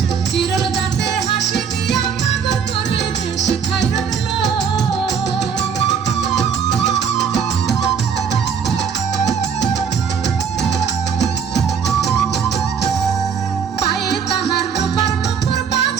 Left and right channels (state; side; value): quieter; left; 6.7 dB